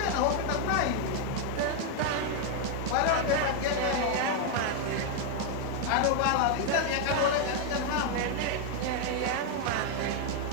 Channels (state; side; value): different; both; correlation 0.00